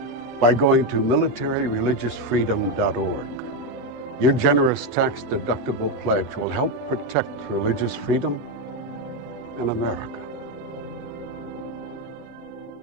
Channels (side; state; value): left; late; 8.1 ms